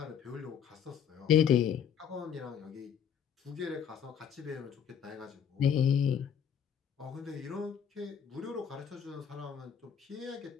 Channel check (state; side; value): quieter; right; 8.1 dB